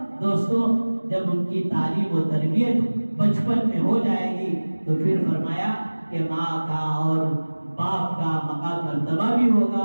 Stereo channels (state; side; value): inverted; both; correlation -1.00